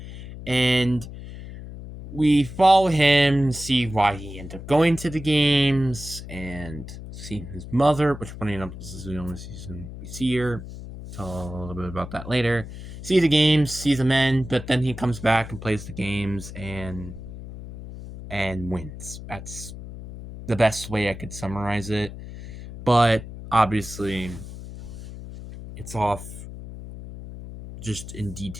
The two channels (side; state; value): left; noise; hum, 12 dB below the sound